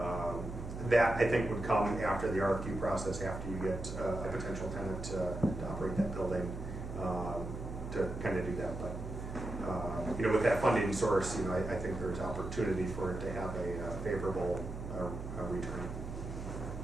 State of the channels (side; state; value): right; noise; hum, 8 dB below the sound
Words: that I think would come after the RFQ process, after you get a potential tenant to operate that building, to kind of do that. But with that funding source, I think there's opportunity for it to have a favorable return.